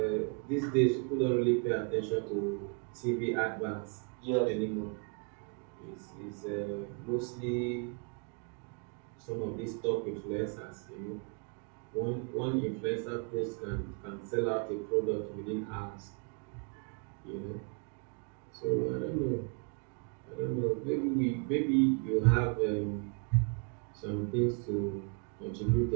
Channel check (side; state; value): left; quieter; 38.1 dB